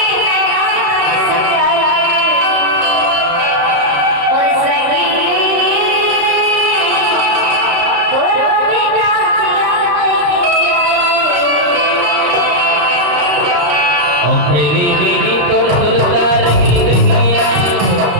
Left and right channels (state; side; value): late; left; 34 ms